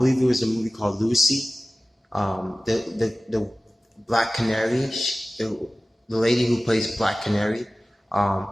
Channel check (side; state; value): both; normal; correlation 0.97